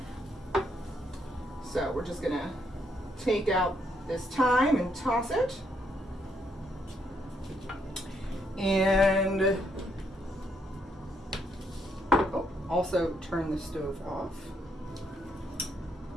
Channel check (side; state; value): both; normal; correlation 0.75